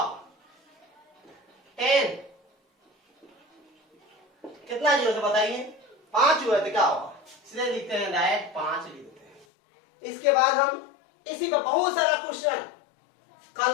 10 कितना जीरो से बताइए? 5 हुआ तो क्या होगा? इसलिए लिखते हैं डायरेक्ट 5 लिख देते हैं। इसके बाद हम इसी पर बहुत सारा क्वेश्चन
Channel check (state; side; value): drops out; right; at 9.5 s